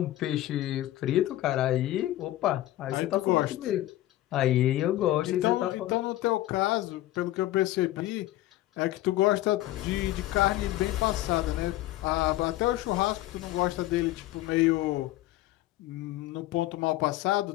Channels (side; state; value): right; quieter; 15.3 dB